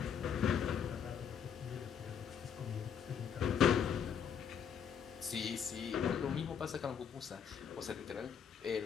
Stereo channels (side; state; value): right; quieter; 7.7 dB